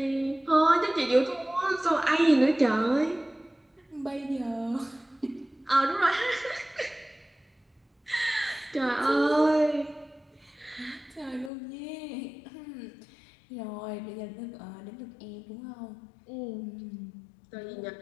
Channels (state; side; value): drops out; right; at 11.5 s